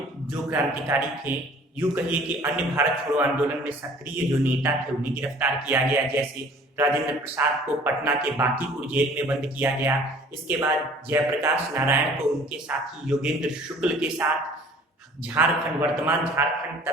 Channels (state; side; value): normal; both; correlation 0.51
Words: जो क्रांतिकारी थे, यूं कहिए कि अन्य भारत छोड़ो आंदोलन में सक्रिय जो नेता थे उन्हें गिरफ्तार किया गया। जैसे राजेंद्र प्रसाद को पटना के बांकीपुर जेल में बंद किया गया। इसके बाद जयप्रकाश नारायण को उनके साथी योगेंद्र शुक्ल के साथ झारखंड, वर्तमान झारखंड